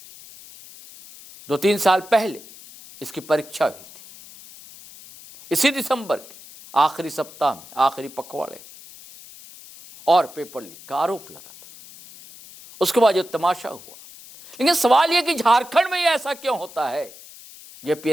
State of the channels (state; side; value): noise; left; hiss, 19 dB below the sound